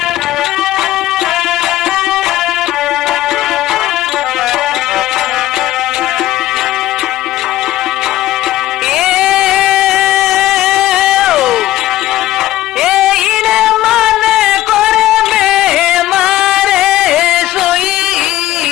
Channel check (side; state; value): right; quieter; 14.9 dB